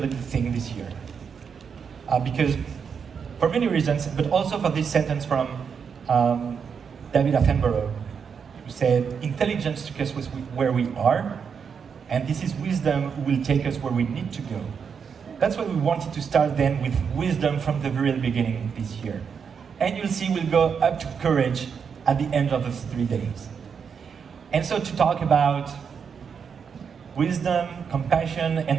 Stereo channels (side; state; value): left; quieter; 6.6 dB